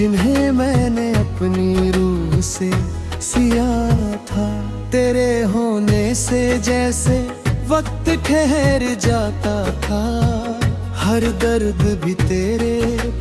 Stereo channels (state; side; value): identical; both; correlation 1.00